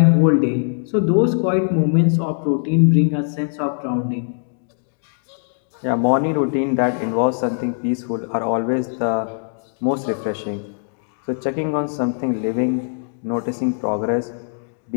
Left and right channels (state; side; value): silent; right; digital silence